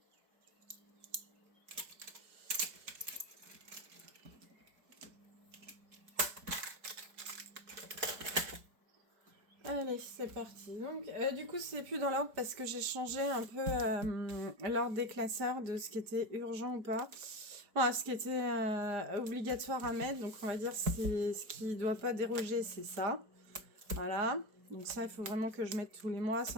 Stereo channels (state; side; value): late; left; 4.7 ms